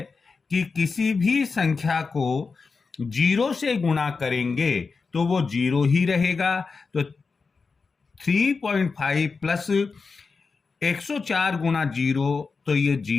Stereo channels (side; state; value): right; quieter; 4.7 dB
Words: कि किसी भी संख्या को 0 से गुणा करेंगे तो वो 0 ही रहेगा। तो 3.5 प्लस 104 गुणा 0 तो ये